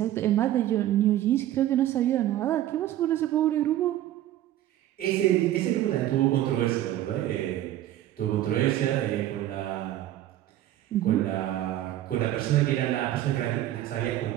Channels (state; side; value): quieter; left; 13.3 dB